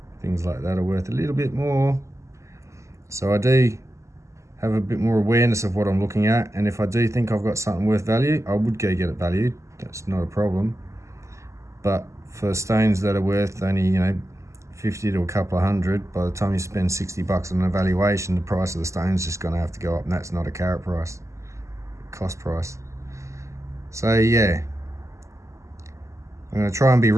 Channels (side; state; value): left; late; 0.14 ms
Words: things like that are worth a little bit more. So I do have a bit more awareness of what I'm looking at, and if I do think I've got something worth value, I would go get it valued. That's not a problem. But for stones that are worth only, you know, 50 to a couple of hundred, by the time you spend $60 on an evaluation, the price of the stone's just going to have to go up, and that's not a carat price, cost price. So yeah, I'm going to try and be